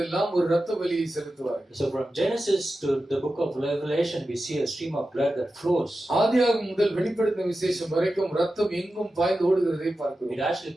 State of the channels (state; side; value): normal; both; correlation 0.92